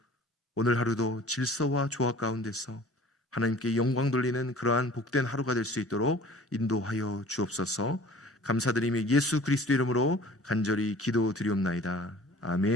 오늘 하루도 질서와 조화 가운데서 하나님께 영광 돌리는 그러한 복된 하루가 될 수 있도록 인도하여 주옵소서. 감사드리며 예수 그리스도 이름으로 간절히 기도드리옵나이다.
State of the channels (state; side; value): normal; both; correlation 0.47